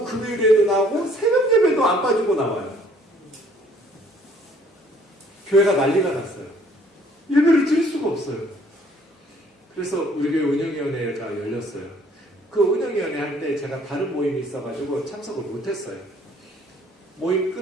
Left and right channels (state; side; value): normal; both; correlation 0.59